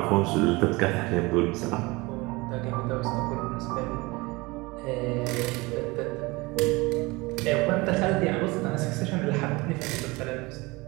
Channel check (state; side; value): quieter; left; 23.6 dB